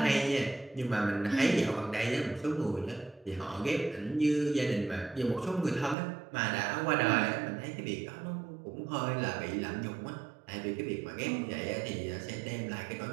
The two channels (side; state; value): left; drops out; at 6.0 s